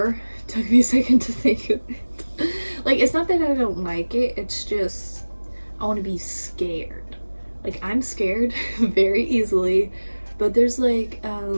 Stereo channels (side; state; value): both; inverted; correlation -1.00